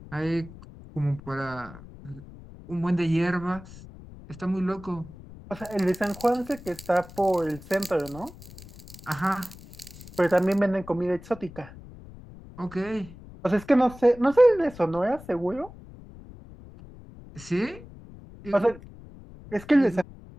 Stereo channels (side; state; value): left; noise; rumble, 18 dB below the sound